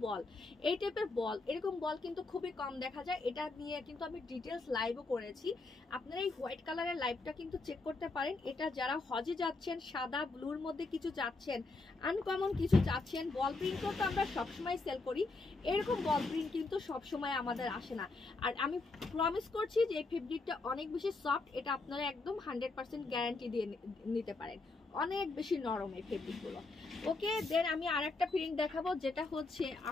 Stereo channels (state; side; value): quieter; right; 3.5 dB